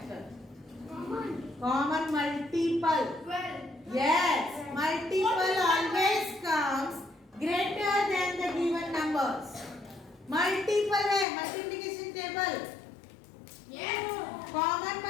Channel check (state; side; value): drops out; right; at 11.2 s